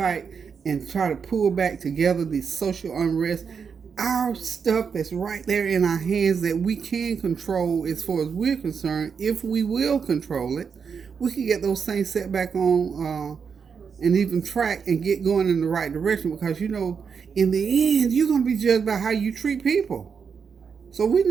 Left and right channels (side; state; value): left; quieter; 6.2 dB